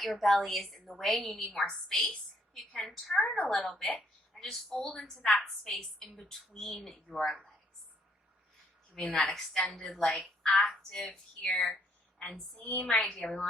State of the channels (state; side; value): normal; both; correlation 0.68